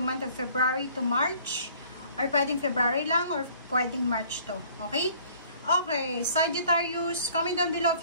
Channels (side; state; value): both; inverted; correlation -0.55